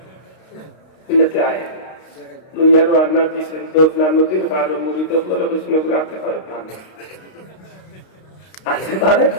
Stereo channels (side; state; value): right; late; 32 ms